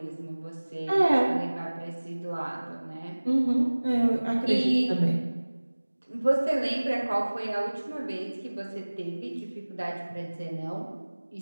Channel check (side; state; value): both; inverted; correlation -1.00